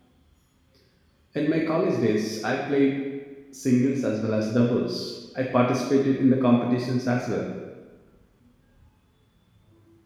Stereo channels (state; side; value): identical; both; correlation 1.00